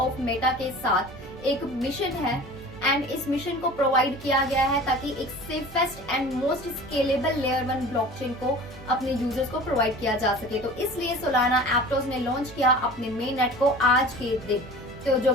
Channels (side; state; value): right; noise; hum, 19 dB below the sound